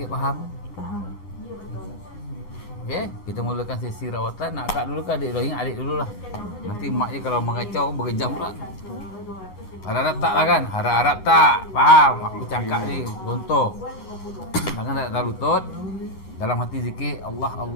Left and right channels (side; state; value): right; late; 11 ms